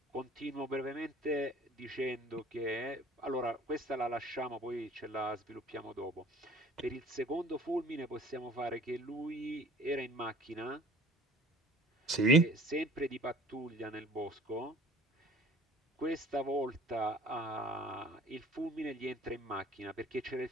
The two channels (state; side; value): normal; both; correlation 0.48